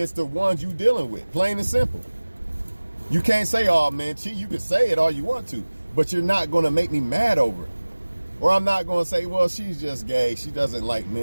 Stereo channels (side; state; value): both; inverted; correlation -1.00